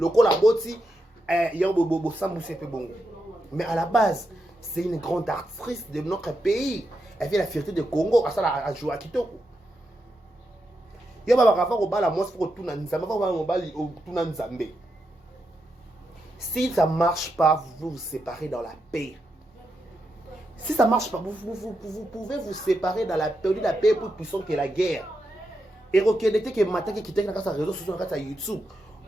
ko la boti yo bo samba c'est peu bon mais à la base c'est une grande artiste de notre pays. Elle vient de la fierté de Congo. À ça, à jouer à Kitoko. Il y a un au bal à moi pour tout le Nzambe. Si ça ne marche pas, vous séparez dans la paix. Si ça ne marche pas, vous pouvez vous séparer dans la paix. La paix est plus puissante que la guerre. Et reconnaissez que matin qui quitte dans sa réseau social, dans YouTube,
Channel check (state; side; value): normal; both; correlation 0.85